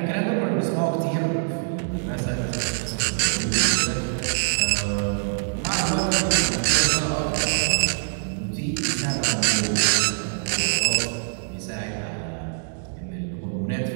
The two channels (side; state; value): left; silent; digital silence